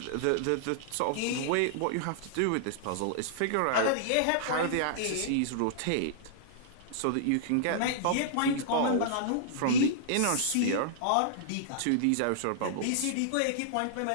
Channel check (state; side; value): different; both; correlation -0.01